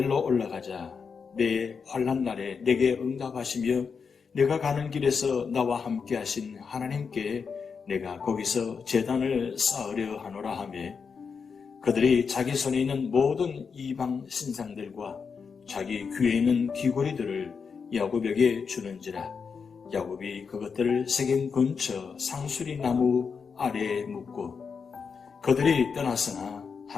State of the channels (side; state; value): right; quieter; 5.8 dB